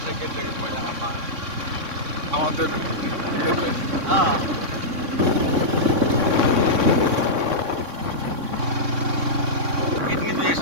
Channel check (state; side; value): late; left; 3.6 ms